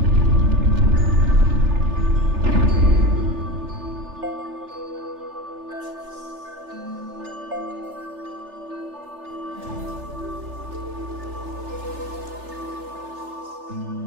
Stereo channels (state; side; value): late; left; 3.4 ms